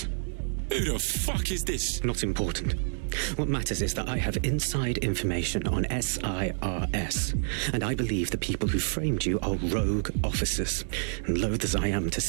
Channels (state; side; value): silent; left; 59 dB below the other